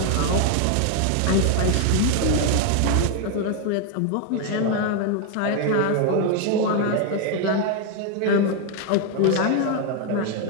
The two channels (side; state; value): both; different; correlation 0.01